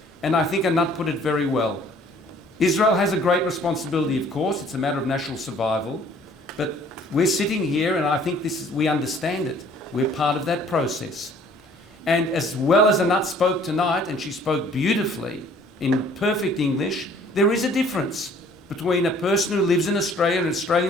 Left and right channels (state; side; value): normal; both; correlation 0.56